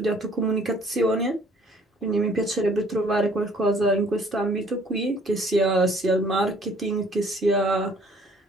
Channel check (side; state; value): both; normal; correlation 0.58